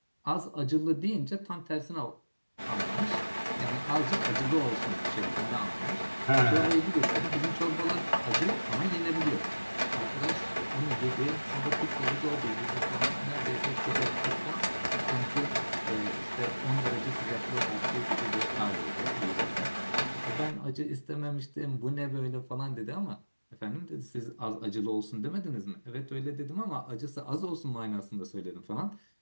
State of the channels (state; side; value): inverted; both; correlation -1.00